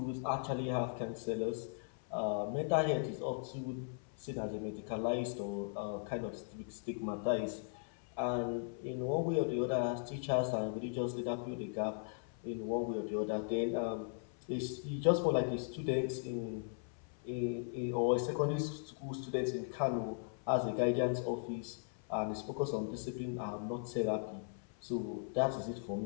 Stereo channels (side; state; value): right; silent; 52 dB below the other